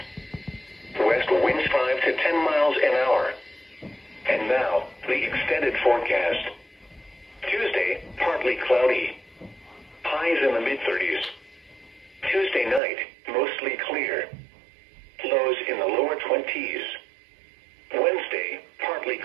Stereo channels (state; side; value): drops out; left; at 12.8 s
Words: West winds 5 to 10 miles an hour. And now, the extended forecast. Tuesday, partly cloudy. Highs in the mid-30s. Tuesday night, mostly clear. Lows in the lower 20s. Wednesday, partly